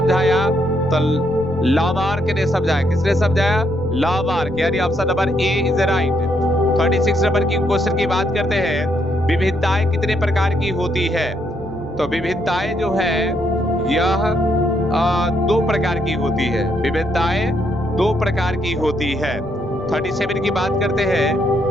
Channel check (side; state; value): left; noise; rumble, 23 dB below the sound